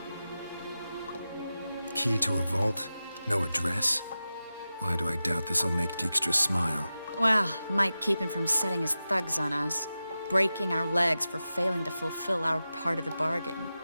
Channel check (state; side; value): inverted; both; correlation -0.93